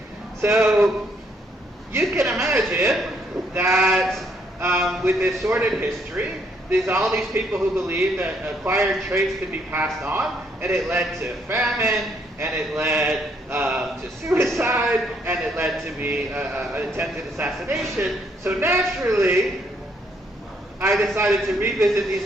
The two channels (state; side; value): normal; both; correlation 0.70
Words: So you can imagine that with this sordid history, there's all these people who believe that acquired traits could be passed on, and it led to famine, and it led to suicide, and it led to an attempted assassination. So naturally, I decided to revisit